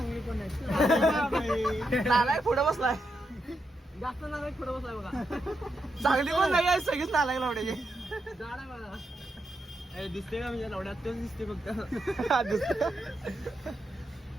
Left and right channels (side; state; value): both; normal; correlation 0.84